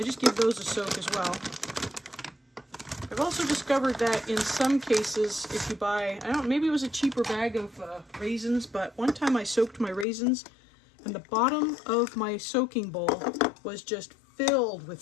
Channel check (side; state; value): right; drops out; at 10.1 s